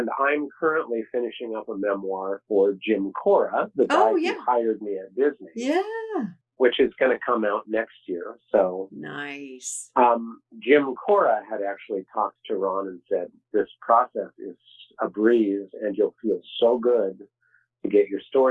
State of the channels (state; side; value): identical; both; correlation 1.00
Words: I'm currently finishing up a memoir for Jim Cora, the guy oh, who yeah, hired me at Disney, yeah, which is going to come out next year. So nice. Jim Cora had actually talked to Ron and said, this process is a breeze and you'll feel so good to get your